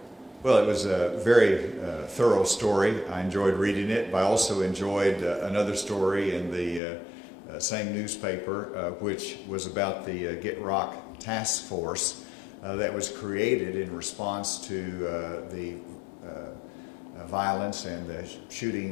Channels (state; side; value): drops out; right; at 6.8 s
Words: Well, it was a very thorough story. I enjoyed reading it, but I also enjoyed another story in the same newspaper, which was about the Get Rock Task Force that was created in response to the violence and the